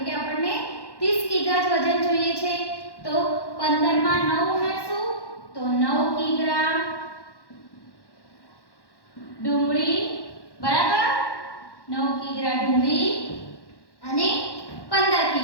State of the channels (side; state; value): right; late; 1.1 ms